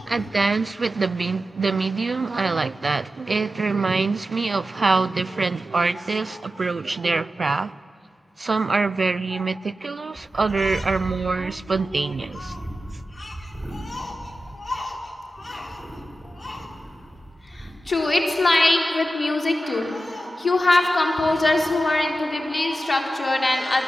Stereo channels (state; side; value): normal; both; correlation 0.92